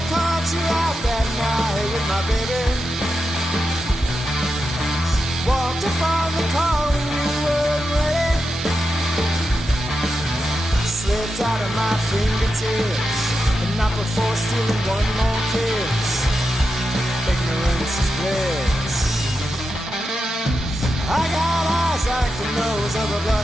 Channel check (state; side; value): normal; both; correlation 0.88